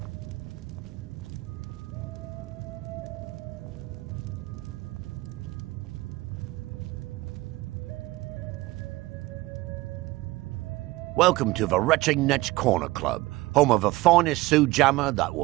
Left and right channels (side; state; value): left; quieter; 19.7 dB